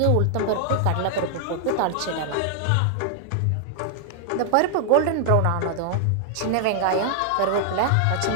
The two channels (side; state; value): both; different; correlation 0.00